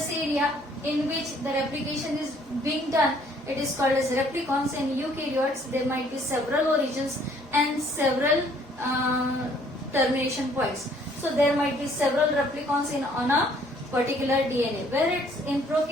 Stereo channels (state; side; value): normal; both; correlation 0.61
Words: area in which the replication is being done, it is called as replicons. In eukaryotes, there might be several origins and several termination points. So there might be several replicons on a particular DNA. Where it's in